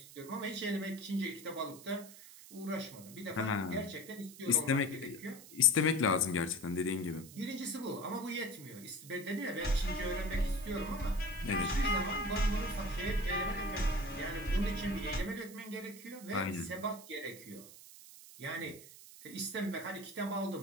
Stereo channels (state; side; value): noise; right; hiss, 17 dB below the sound